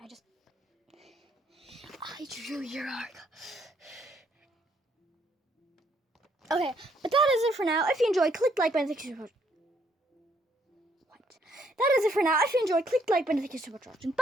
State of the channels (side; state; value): both; normal; correlation 0.70